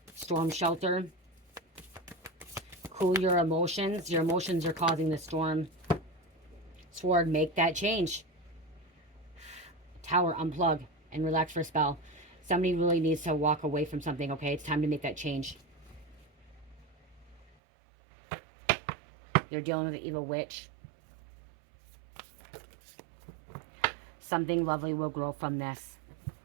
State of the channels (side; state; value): left; drops out; at 17.4 s